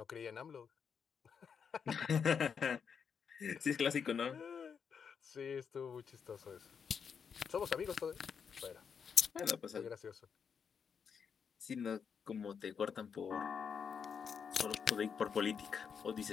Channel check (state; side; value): quieter; right; 6.7 dB